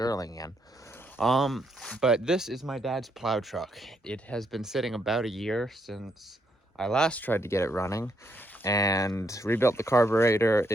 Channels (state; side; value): normal; both; correlation 0.75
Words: in. But this is my dad's plow truck. It has been sitting about a year since I last tried to get it running and rebuilt the carburetor.